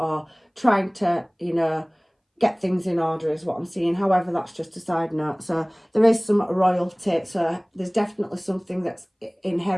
trying to, you know, get things in order is what I'm seeing. However, that's just a side note. So there is some royalty. So there's definitely something that's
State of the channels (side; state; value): both; identical; correlation 1.00